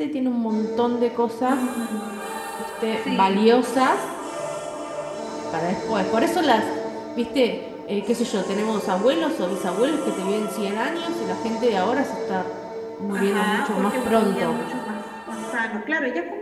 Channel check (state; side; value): identical; both; correlation 1.00